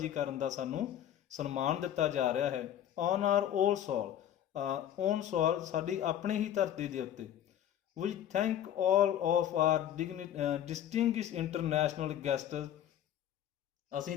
ਕਰਨ ਦਾ ਸਾਨੂੰ ਸਨਮਾਨ ਦਿੱਤਾ ਜਾ ਰਿਹਾ ਹੈ। On our own soil, own soil, ਸਾਡੀ ਆਪਣੀ ਹੀ ਧਰਤੀ ਦੇ ਉੱਤੇ। We thank all of our distinguished international guests, ਅਸੀਂ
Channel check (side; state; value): right; quieter; 10.8 dB